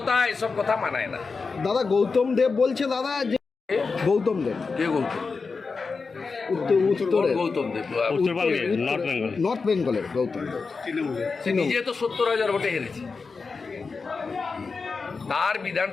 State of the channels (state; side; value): quieter; right; 4.6 dB